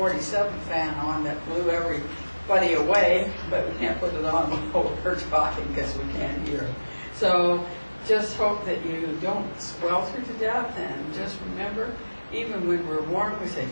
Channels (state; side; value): inverted; both; correlation -1.00